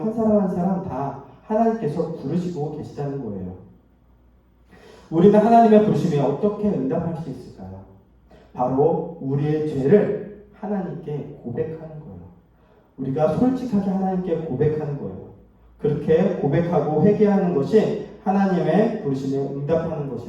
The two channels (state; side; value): identical; both; correlation 1.00